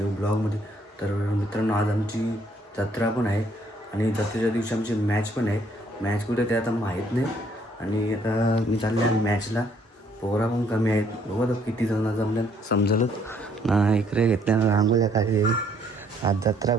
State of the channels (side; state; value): both; normal; correlation 0.66